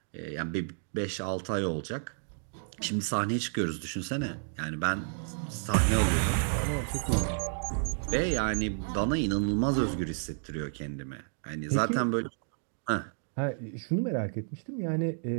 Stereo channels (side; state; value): left; silent; digital silence